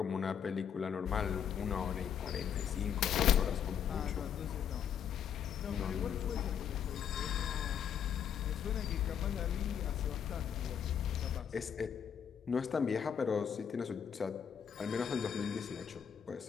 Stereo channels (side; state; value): right; quieter; 8.2 dB